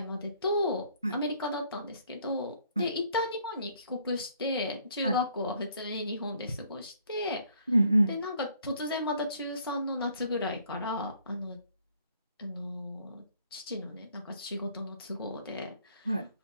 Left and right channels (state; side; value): inverted; both; correlation -0.63